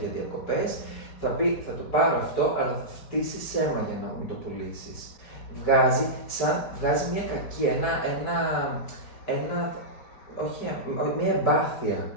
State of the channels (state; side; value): late; right; 4.7 ms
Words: για διακοπές, θα πει θα το πάρω αυτό, αλλά θα φτύσει αίμα για να μου το πουλήσεις. Βγάζει μια κακή, μια εμπάθεια,